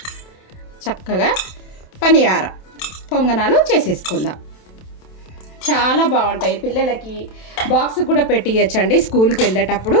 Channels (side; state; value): right; late; 27 ms